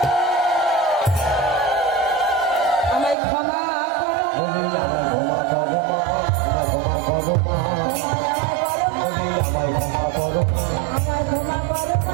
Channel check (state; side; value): drops out; left; at 3.2 s